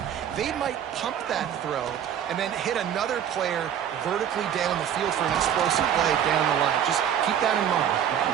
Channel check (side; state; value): left; quieter; 9.4 dB